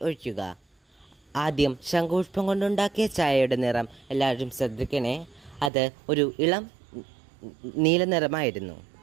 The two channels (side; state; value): left; drops out; at 5.7 s